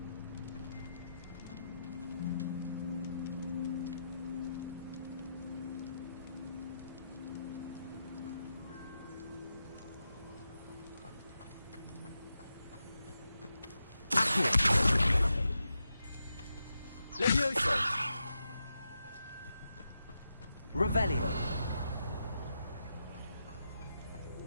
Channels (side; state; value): both; inverted; correlation -0.87